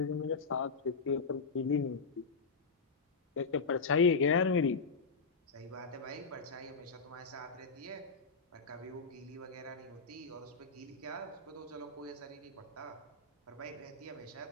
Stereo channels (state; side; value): quieter; right; 4.6 dB